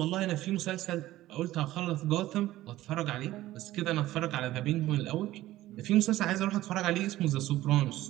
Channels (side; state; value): left; quieter; 15.6 dB